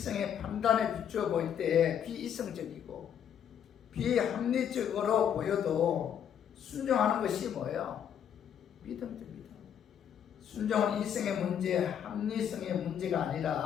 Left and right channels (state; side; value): quieter; right; 8.9 dB